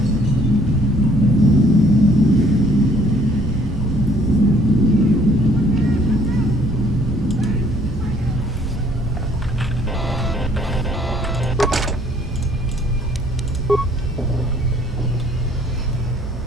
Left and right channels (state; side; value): normal; both; correlation 0.60